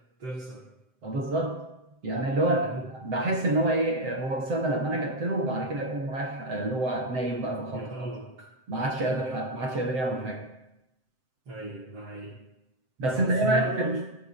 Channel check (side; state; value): left; late; 7.7 ms